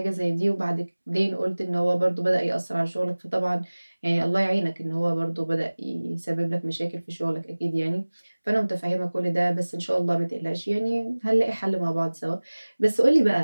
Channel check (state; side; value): inverted; both; correlation -1.00